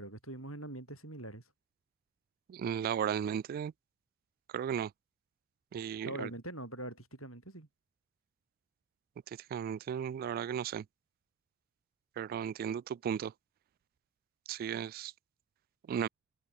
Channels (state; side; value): quieter; left; 7.3 dB